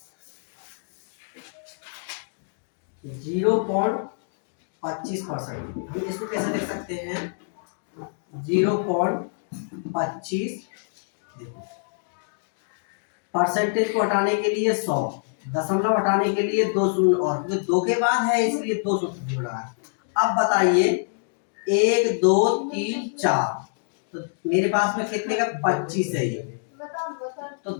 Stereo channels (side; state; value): right; silent; digital silence